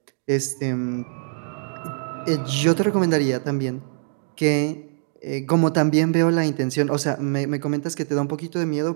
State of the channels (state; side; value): silent; left; 63 dB below the other